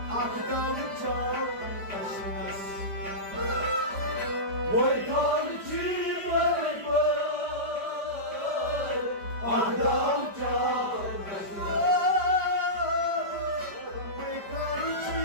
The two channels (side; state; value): left; late; 5.1 ms